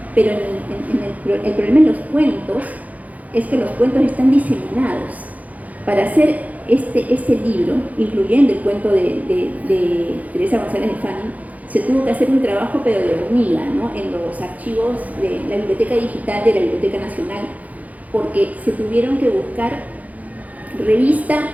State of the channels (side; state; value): left; late; 0.075 ms